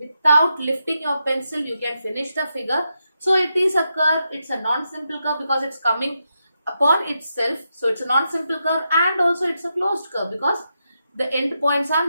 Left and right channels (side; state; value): both; inverted; correlation -0.85